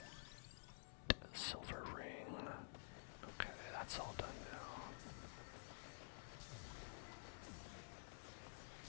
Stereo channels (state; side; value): silent; right; digital silence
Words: Silver ring. Okay, that's all done now.